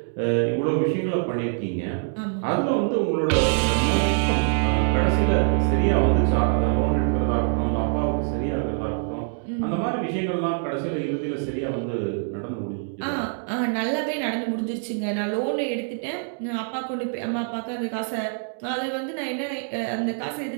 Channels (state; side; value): silent; left; 62 dB below the other